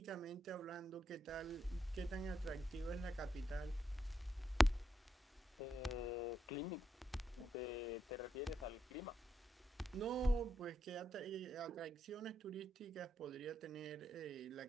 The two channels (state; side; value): normal; both; correlation 0.81